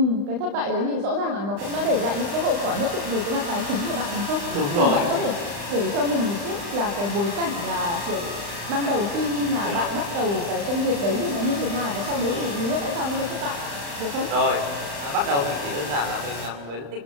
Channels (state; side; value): late; left; 35 ms